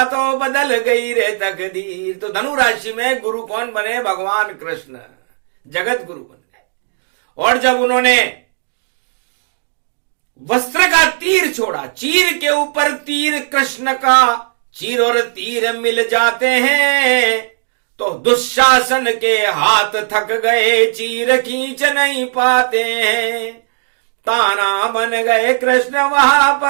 तो बदल गई रे तकदीर। तो धनु राशि में गुरु कौन बने? भगवान कृष्ण जगत गुरु बन गए। और जब उन्होंने वस्त्र का तीर छोड़ा, चीर के ऊपर तीर कृष्ण का, चीर और तीर मिल जाते हैं तो दुशासन के हाथ थक गए, चीर खींच नहीं पाते हैं। ताना बन गए कृष्ण वहां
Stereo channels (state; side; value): silent; left; digital silence